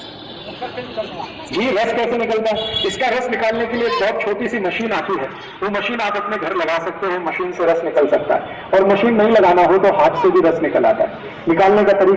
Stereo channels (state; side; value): identical; both; correlation 1.00